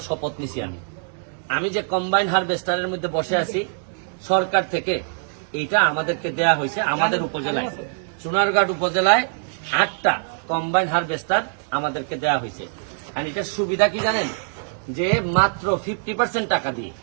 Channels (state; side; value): silent; left; 63 dB below the other